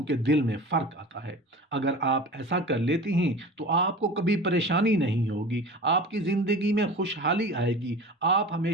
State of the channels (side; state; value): both; normal; correlation 0.36